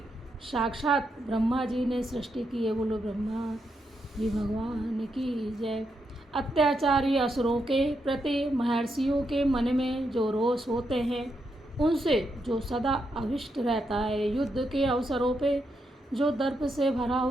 साक्षात ब्रह्मा जी ने सृष्टि की है। बोलो ब्रह्मा जी भगवान की जय। अत्याचारी असुरों के प्रति महर्षियों के मन में जो रोष होते हैं, उनसे जो सदा अभिष्ट रहता है, युद्ध के अवसरों पे जो दर्प से भरा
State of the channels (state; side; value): normal; both; correlation 0.82